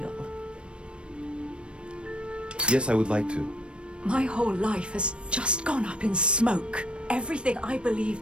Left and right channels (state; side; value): late; left; 0.058 ms